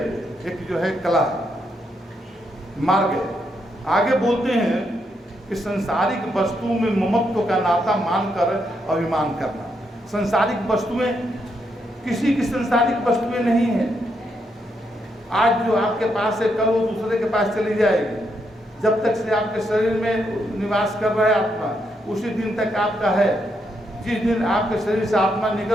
एक जो है कला है, मार्ग है। आगे बोलते हैं कि संसारिक वस्तुओं में ममत्व का नाता मानकर अभिमान करना। संसारिक वस्तुएं, किसी की संसारिक वस्तुएं नहीं है। आज जो आपके पास है, कल वो दूसरे के पास चली जाएगी। जब तक से आपके शरीर में निवास कर रहा है आत्मा, उसी दिन तक आपका है। जिस दिन आपके शरीर से आत्मा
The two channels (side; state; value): both; normal; correlation 0.79